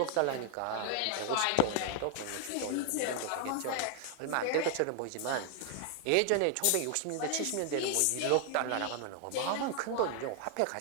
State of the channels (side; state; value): both; different; correlation 0.00